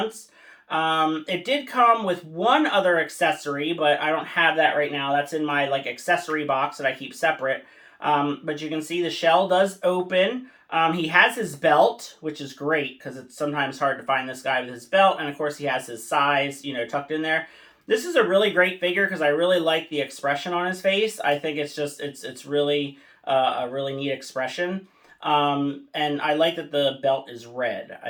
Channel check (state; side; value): identical; both; correlation 1.00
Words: It did come with one other accessory, but I don't have that right now. That's in my, like, accessory box that I keep separate. But you can see the shell does open. He has his belt, which is great, because it's sometimes hard to find this guy with his belt. And, of course, he has his size, you know, tucked in there. This is a really great figure because I really like the expression on his face. I think it's just, it's really a really neat expression. And I like that the belt is red.